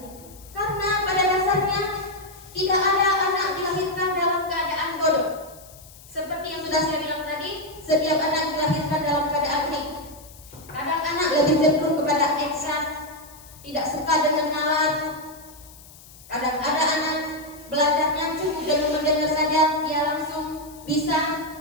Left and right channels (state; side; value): noise; left; hiss, 21 dB below the sound